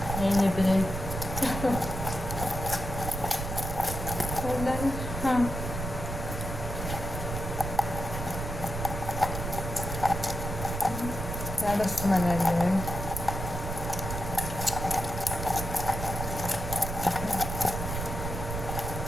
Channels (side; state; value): right; noise; rumble, 5 dB below the sound